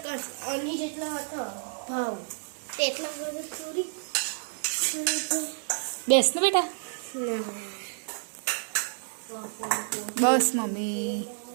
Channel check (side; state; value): left; silent; digital silence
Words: અની જેટલો હતો ભાવ તેટલા બધું થોડી બેસ ને બેટા. ના બસ મમ્મી.